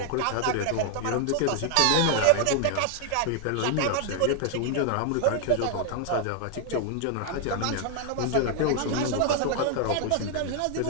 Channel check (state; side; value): different; both; correlation 0.00